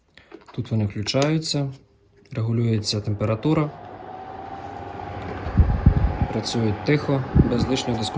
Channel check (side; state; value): both; identical; correlation 1.00